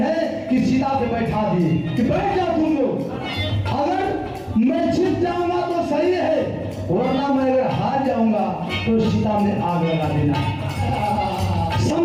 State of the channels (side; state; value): both; identical; correlation 1.00